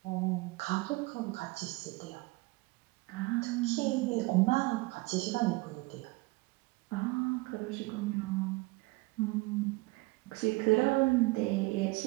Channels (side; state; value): left; quieter; 23.5 dB